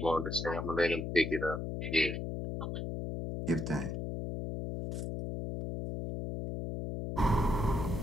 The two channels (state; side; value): noise; left; hum, 4 dB below the sound